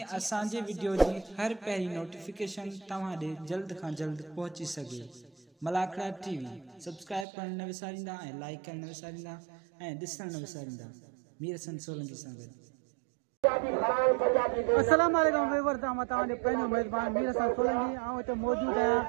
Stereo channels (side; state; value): left; drops out; at 7.2 s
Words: असांजे वीडियो जी हर पहिरीं नोटिफिकेशन तव्हां ॾे जल्द खां जल्द पहुची सघे। मलाखड़ा टीवी सब्सक्राइब करण न विसारींदा ऐं लाइक करण न विसारींदा ऐं ॾिसण न विसारींदा। मीर हसन सोलंकी सां गॾु। अस्सलाम वालेकुम व्यूअर्स, तव्हांजो पंहिंजो मेज़बान मीर हसन सोलंकी हिते मौजूदु